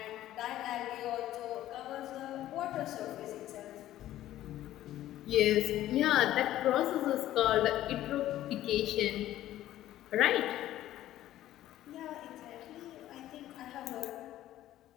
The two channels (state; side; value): quieter; right; 13.7 dB